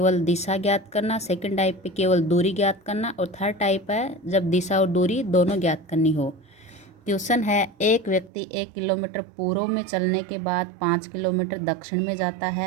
दिशा ज्ञात करना, सेकंड टाइप पे केवल दूरी ज्ञात करना, और थर्ड टाइप है जब दिशा और दूरी दोनों ज्ञात करनी हो। क्वेश्चन है, एक व्यक्ति 1 किलोमीटर पूर्व में चलने के बाद 5 किलोमीटर दक्षिण में जाता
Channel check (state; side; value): drops out; left; at 8.3 s